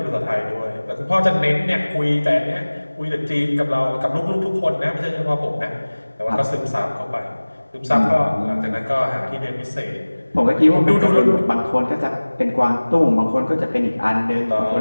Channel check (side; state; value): both; inverted; correlation -1.00